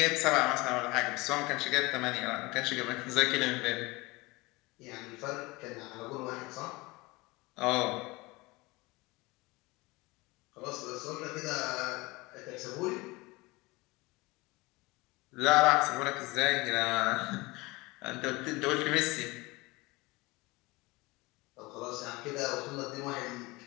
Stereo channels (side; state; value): right; quieter; 23.0 dB